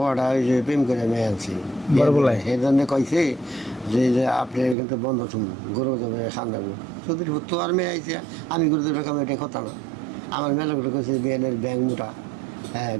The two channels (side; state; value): left; drops out; at 4.8 s